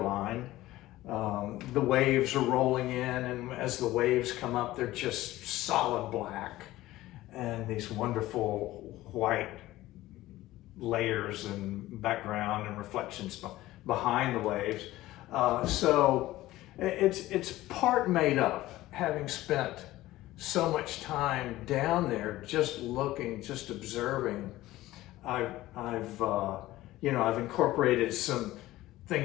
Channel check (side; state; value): right; quieter; 16.5 dB